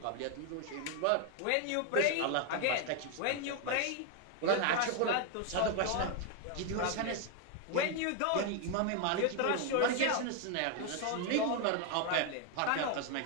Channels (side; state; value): both; different; correlation 0.01